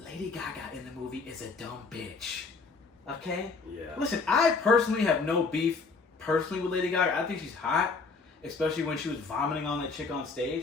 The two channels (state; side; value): quieter; right; 4.4 dB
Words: Gaga in the movie is a dumb bitch. Okay? Yeah. Listen, I personally have no beef personally with Lady Gaga. I think she's hot, especially when she was vomiting on that chick on